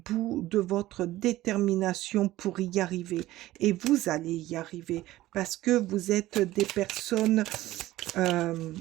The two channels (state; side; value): quieter; left; 16.2 dB